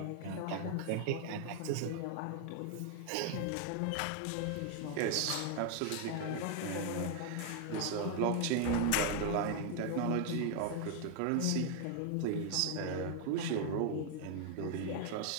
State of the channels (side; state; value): both; different; correlation 0.00